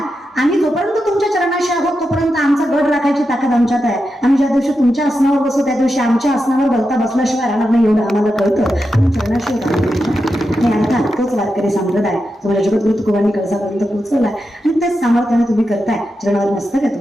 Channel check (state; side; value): normal; both; correlation 0.88